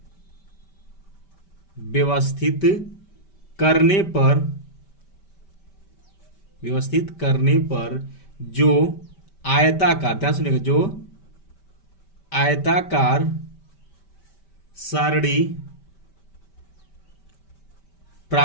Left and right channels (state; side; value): late; right; 5.1 ms